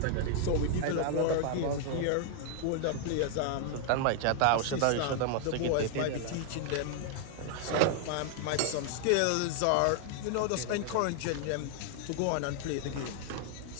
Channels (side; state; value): both; different; correlation 0.00